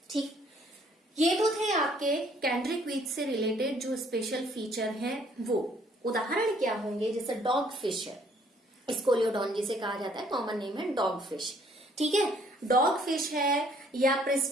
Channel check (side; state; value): both; normal; correlation 0.62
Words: ठीक, ये तो थे आपके कैंड्रिक वीच से रिलेटेड जो स्पेशल फीचर हैं वो। उदाहरण क्या होंगे, जैसे डॉग फिश है, स्कोलियोडॉन जिसे कहा जाता है, कॉमन नेम है डॉग फिश। ठीक है, डॉग फिश है, या